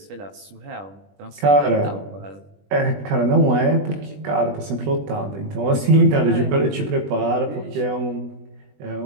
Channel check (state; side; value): late; left; 20 ms